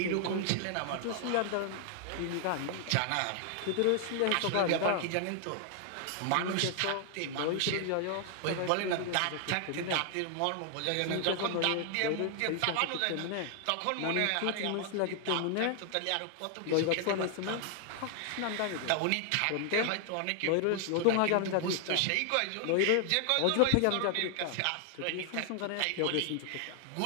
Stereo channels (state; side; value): different; both; correlation 0.00